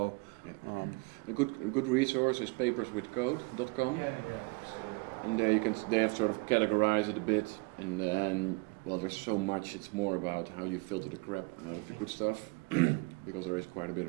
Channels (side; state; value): left; quieter; 28.0 dB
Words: Yeah. A good resource is paperswithcode.com. And there they have sort of categorized it a bit, and then there's so much. It's more about how you filter the crap out of the good stuff, because there is quite a bit